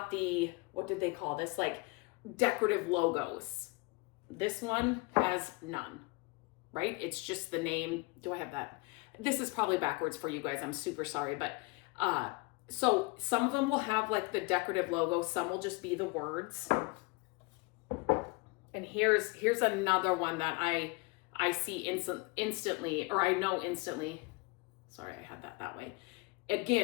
the, what did they call this? Like decorative logos. This one has none, right? It's just the name. Do I have that? This is probably backwards for you guys. I'm super sorry. But so some of them will have like the decorative logo. Some will just be the words. And here's another one that I see instantly, or I know instantly. Sorry, I had that way.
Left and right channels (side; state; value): right; quieter; 25.9 dB